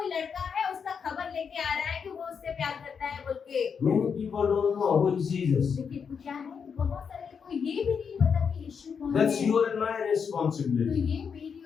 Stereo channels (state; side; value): quieter; right; 6.4 dB